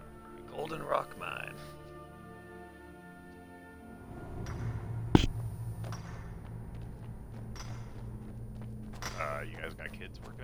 Golden Rock Mine. You guys got kids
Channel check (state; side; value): identical; both; correlation 1.00